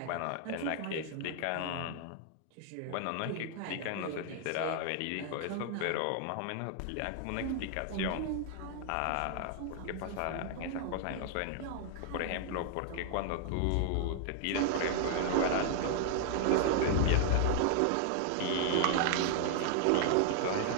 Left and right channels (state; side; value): different; both; correlation 0.00